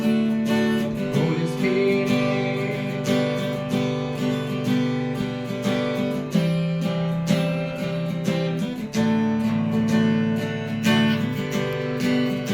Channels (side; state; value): both; identical; correlation 1.00